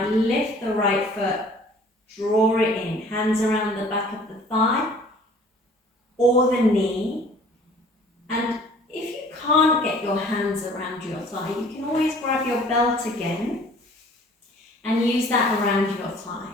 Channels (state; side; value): normal; both; correlation 0.52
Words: lift the right foot, draw it in, hands around the back of the thigh or the knee. And if you can't get your hands around your thigh, you can always grab your belt again and use that around your thigh.